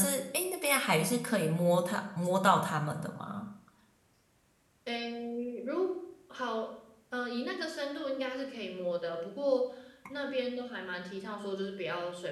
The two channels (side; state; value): both; identical; correlation 1.00